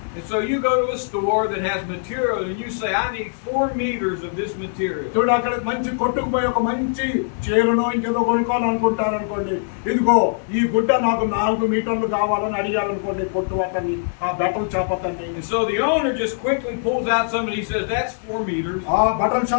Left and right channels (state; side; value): silent; right; digital silence